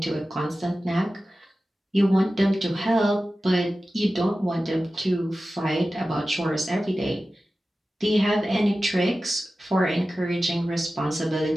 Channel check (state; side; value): normal; both; correlation 0.95